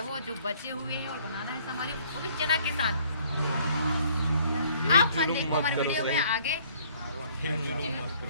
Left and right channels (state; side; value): inverted; both; correlation -0.60